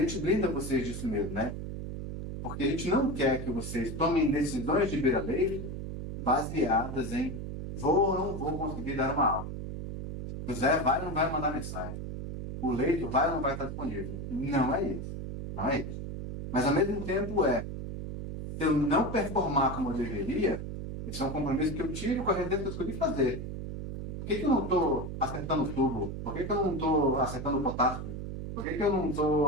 blinda vocês disso mesmo, né? Porque a gente não quer que vocês tomem decisões de beira-leito baseadas em vou ou não vou conseguir dar uma aula. O Zé vai ou não vai mandar mensagem. O leito vai ou não vai estar disponível. Não é isso. Não é isso. Mas ao mesmo tempo se eu não performar como eu deveria, esse é um compromisso que eu tive com a residência que eu escolhi fazer. Por que eu não estou acertando o tubo? Por que eu não estou acertando o potássio? Por que eu não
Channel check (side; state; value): right; noise; hum, 6 dB below the sound